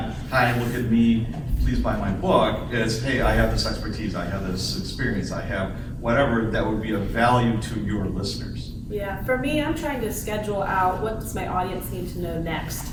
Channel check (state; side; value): identical; both; correlation 1.00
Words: hi, look at me, please buy my book. It's, hey, I have this expertise, I have this experience, I have whatever that would be of value to your listeners. Yeah, for me, I'm trying to schedule out what does my audience need to know next,